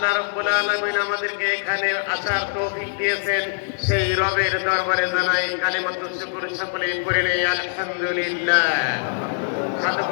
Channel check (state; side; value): silent; right; 63 dB below the other